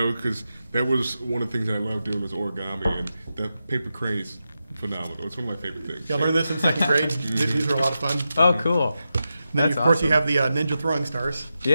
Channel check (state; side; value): inverted; both; correlation -0.90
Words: because that was one of the things that I loved doing was origami, and the paper crane is phenomenal. It's one of my favorite things. Yeah, I learned this in second grade. These are a lot of fun. Oh, cool. And then That's of course you awesome. have the ninja throwing stars.